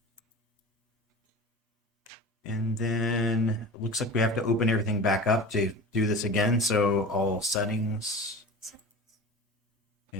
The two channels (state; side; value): normal; both; correlation 0.34